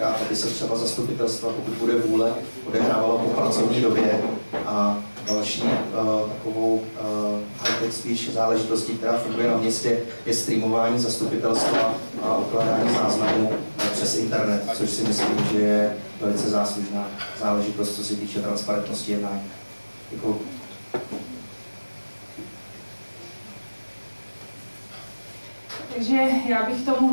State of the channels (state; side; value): inverted; both; correlation -1.00